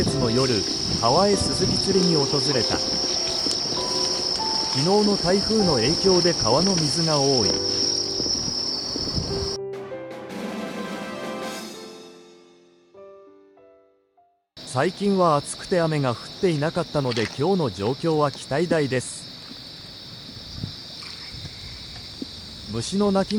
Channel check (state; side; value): identical; both; correlation 1.00